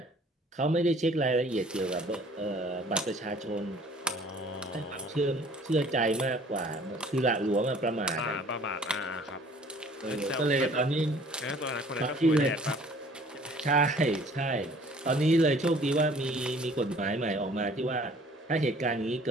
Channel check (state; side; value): normal; both; correlation 0.53